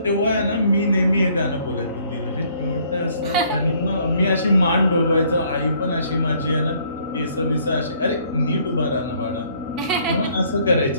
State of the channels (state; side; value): inverted; both; correlation -0.63